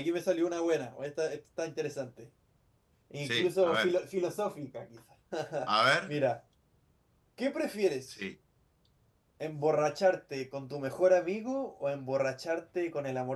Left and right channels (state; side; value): identical; both; correlation 1.00